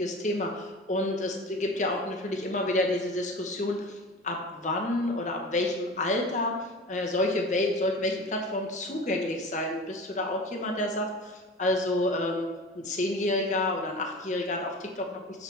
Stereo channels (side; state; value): both; normal; correlation 0.35